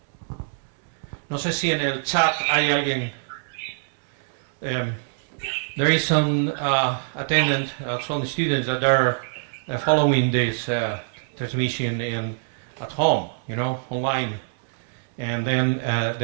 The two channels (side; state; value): left; silent; digital silence